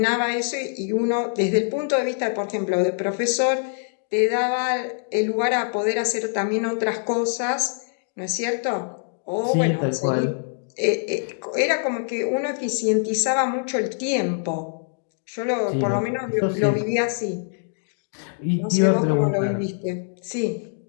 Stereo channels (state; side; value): silent; right; digital silence